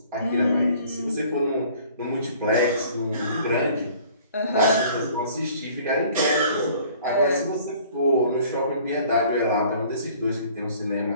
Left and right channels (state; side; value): inverted; both; correlation -0.53